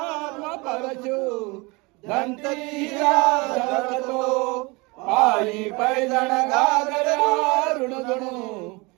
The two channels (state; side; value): quieter; left; 26.3 dB